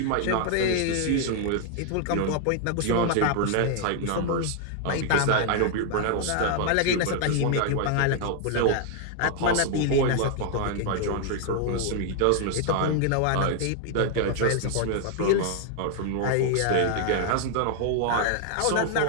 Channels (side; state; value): both; different; correlation 0.00